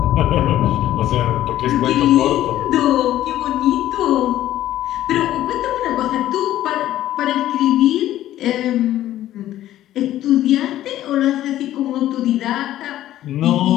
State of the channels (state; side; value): quieter; right; 13.4 dB